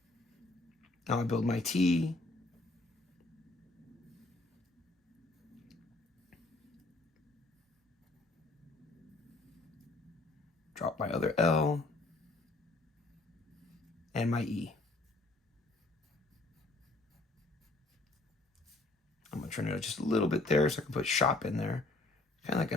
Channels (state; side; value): quieter; right; 3.0 dB